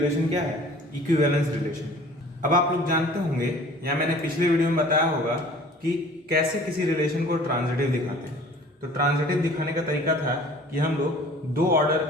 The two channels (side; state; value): both; normal; correlation 0.48